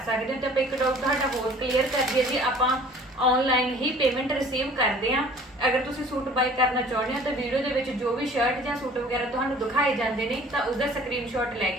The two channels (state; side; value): normal; both; correlation 0.50